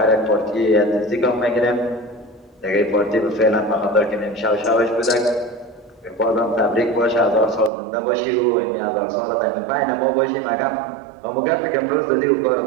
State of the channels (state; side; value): drops out; left; at 7.7 s